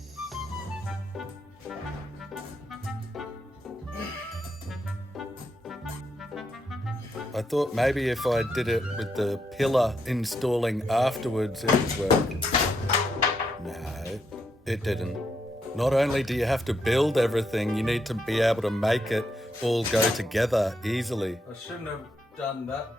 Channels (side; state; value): both; normal; correlation 0.80